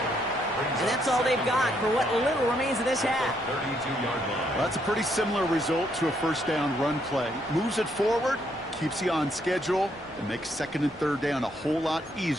And that's all they've got for what little remains of this half. 32-yard line. Well, that's a pretty similar result to a first down run play. Moves it forward, keeps you on schedule, and makes second and third down a whole lot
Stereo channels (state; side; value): normal; both; correlation 0.73